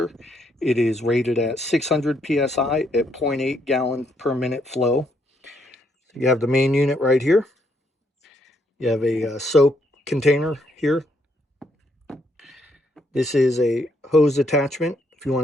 It is rated at 600 psi at 0.8 gallon per minute flow. You have the main unit right here. You have a soap container here. This is a hose attachment if you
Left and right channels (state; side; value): normal; both; correlation 0.73